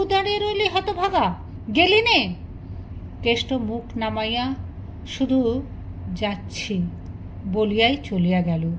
দাঁড়িয়ে রইলি হতভাগা, গেলি নে? কেষ্ট মুখ নামাইয়া শুধু যাচ্ছি বলিয়াই চলিয়া গেল।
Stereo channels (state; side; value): identical; both; correlation 1.00